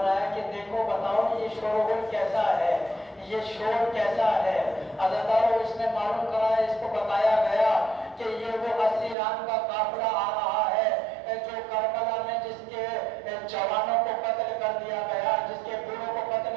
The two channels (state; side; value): drops out; left; at 9.2 s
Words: کہ دیکھو بتاؤ یہ شور و غل کیسا ہے, یہ شور کیسا ہے. حضرت اس نے معلوم کرایا, اس کو بتایا گیا کہ یہ وہ اسیران کا قافلہ آ رہا ہے جو کربلا میں جس کے جوانوں کو قتل کر دیا گیا, جس کے بوڑھوں کو قتل